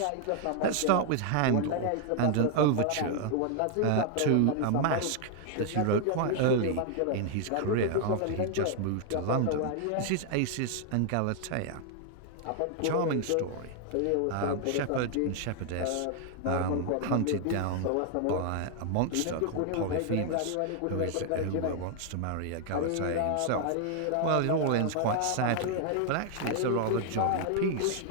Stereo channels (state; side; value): different; both; correlation 0.00